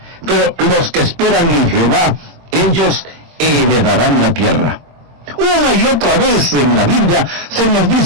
pero los que esperan en Jehová, ellos heredarán la tierra. Una y otra vez en la Biblia se nos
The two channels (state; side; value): late; left; 23 ms